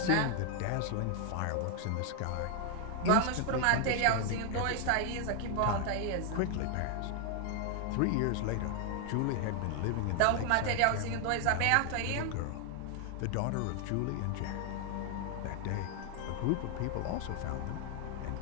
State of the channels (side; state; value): both; different; correlation 0.00